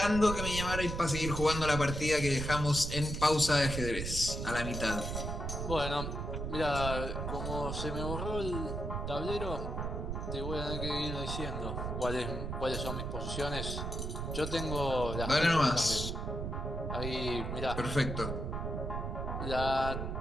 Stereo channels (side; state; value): right; noise; rumble, 4 dB below the sound